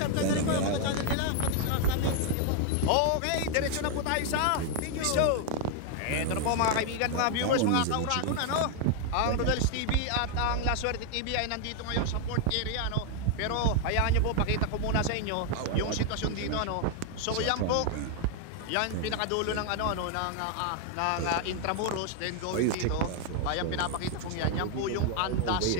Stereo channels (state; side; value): different; both; correlation 0.00